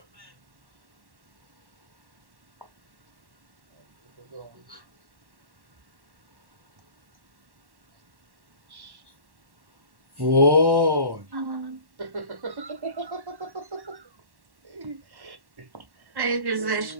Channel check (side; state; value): left; late; 1.1 ms